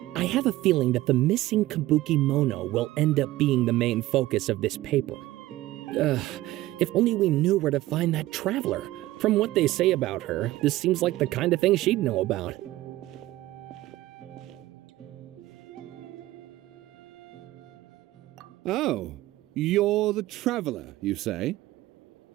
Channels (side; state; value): left; quieter; 16.7 dB